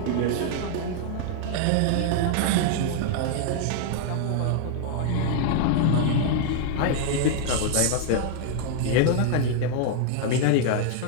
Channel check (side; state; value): both; different; correlation 0.00